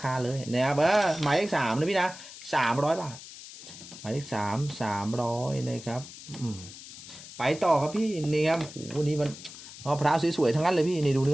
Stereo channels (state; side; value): noise; left; hiss, 15 dB below the sound